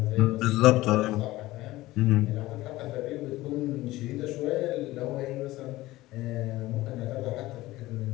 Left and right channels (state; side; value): quieter; right; 17.7 dB